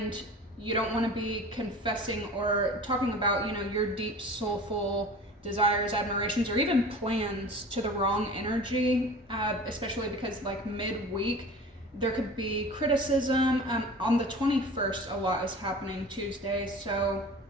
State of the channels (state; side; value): normal; both; correlation 0.40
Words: you don't want to be confessing or talking about your deep soulful desires, admirations, or even plans to the wrong energy, especially because like midweek there could be criticism. On the 21st a lot is happening, Tuesday, so